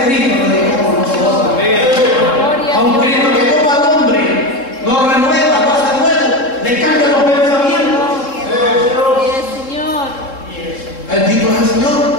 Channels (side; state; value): right; late; 3.7 ms